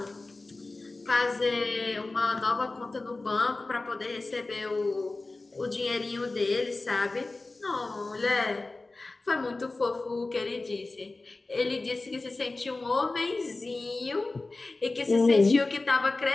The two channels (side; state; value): right; quieter; 3.3 dB